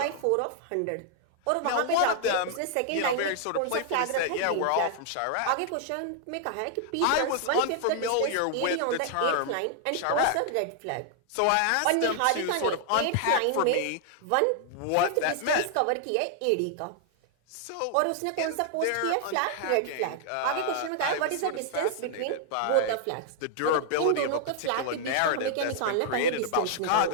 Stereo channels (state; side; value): different; both; correlation -0.01